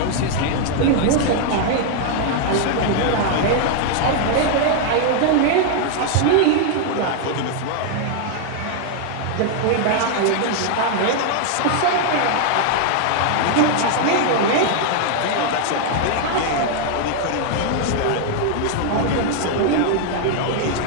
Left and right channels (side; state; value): both; different; correlation 0.00